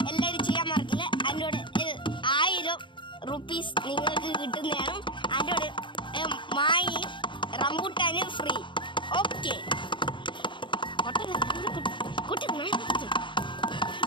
എല്ലാവരും ചെയ്യാൻ മറക്കില്ല. അതിനോട് 1000 റുപ്പീസ് നിങ്ങൾക്ക് കിട്ടുന്നതാണ്. അതിനോട് മായി റംബൂട്ടാന് ഫ്രീ. ഓക്കെ കുട്ടി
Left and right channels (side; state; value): right; late; 0.23 ms